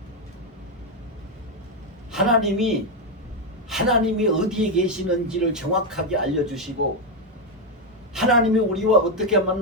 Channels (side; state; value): both; normal; correlation 0.05